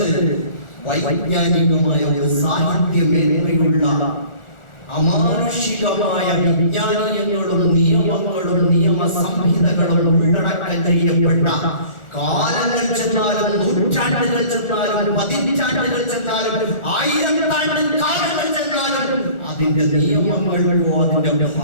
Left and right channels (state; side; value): late; right; 1.4 ms